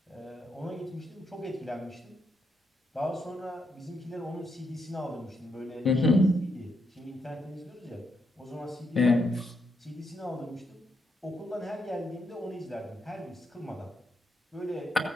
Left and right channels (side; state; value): both; normal; correlation 0.79